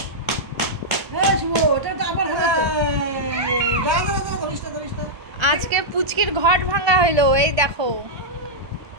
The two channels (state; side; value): late; left; 1.2 ms